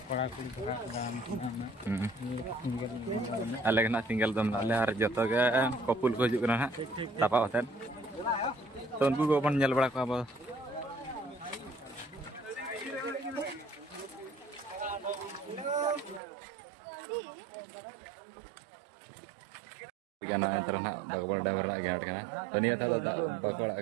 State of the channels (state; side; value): drops out; left; at 16.2 s